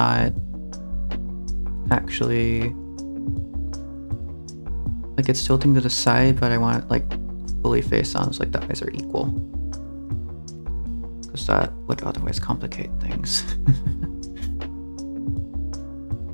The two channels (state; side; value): inverted; both; correlation -1.00